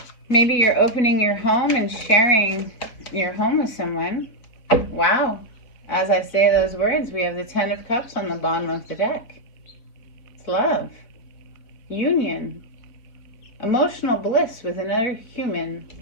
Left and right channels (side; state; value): right; late; 4.2 ms